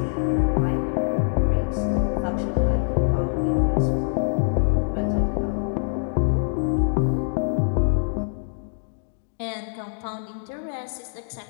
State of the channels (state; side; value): silent; right; digital silence